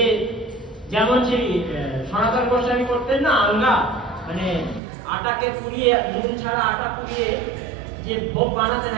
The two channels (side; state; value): left; drops out; at 4.8 s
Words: যেমন সেই সনাতন গোস্বামী করতেন না, আলগা, মানে আটাকে পুড়িয়ে, নুন ছাড়া আটা পুড়িয়ে যে ভোগ বানাতেন,